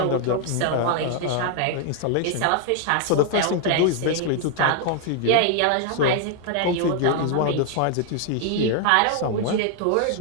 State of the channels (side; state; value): both; different; correlation 0.00